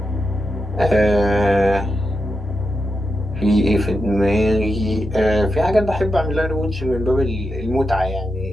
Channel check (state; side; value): normal; both; correlation 0.87